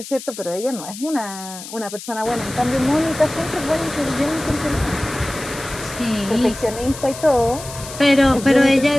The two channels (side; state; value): left; noise; hiss, 13 dB below the sound